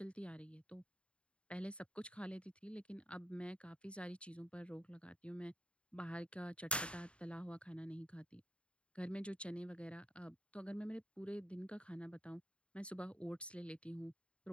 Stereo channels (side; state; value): right; late; 0.058 ms